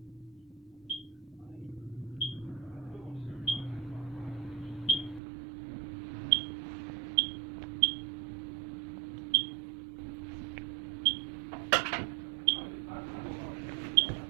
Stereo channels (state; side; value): drops out; left; at 5.2 s